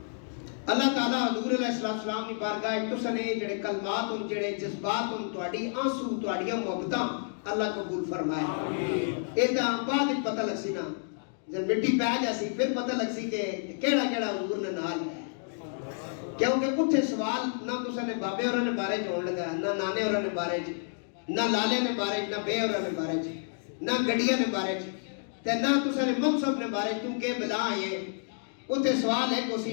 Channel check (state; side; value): silent; right; digital silence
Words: اللہ تعالیٰ حضور علیہ السلام کی بارگاہ تساں نے جڑے کلمات ان جڑے جذبات ان تواڈی آنسو تواڈیاں محبتاں اللہ قبول فرمائے۔ ایدا بعد پتہ لگ سی نا، جب مٹی پہ جاسی پھر پتہ لگ سی کہ کیڑا کیڑا حضور نے نال ہے، کیونکہ اتھے سوال نہ تساں نے بابے ہوراں نے بارے چ ہون لگا، نہ نانے ہوراں نے بارے چ، نہ لالے نے بارے چ، نہ بے ہوراں نے بارے چ، نہ گڈیاں نے بارے چ، تے نہ تساں نے منصب نے بارے چ، کیونکہ بلا یہ اتھے سوال ہے کہ اسی